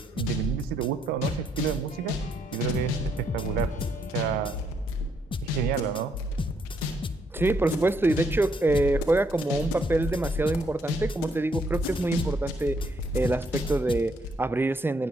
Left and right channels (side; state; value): both; normal; correlation 0.72